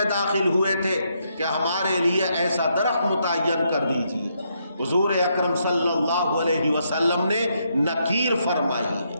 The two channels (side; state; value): both; inverted; correlation -0.77